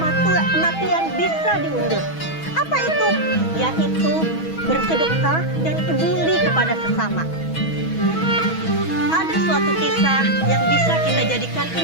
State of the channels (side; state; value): right; late; 6.2 ms